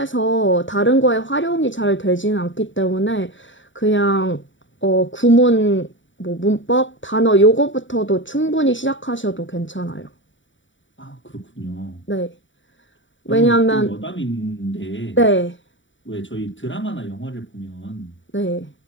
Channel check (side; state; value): right; late; 0.55 ms